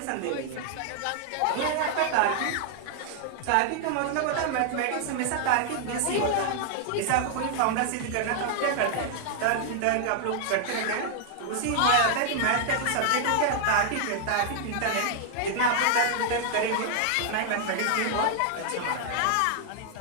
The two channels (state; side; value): different; both; correlation 0.00